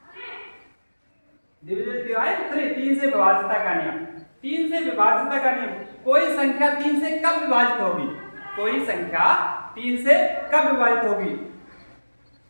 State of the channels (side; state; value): both; inverted; correlation -1.00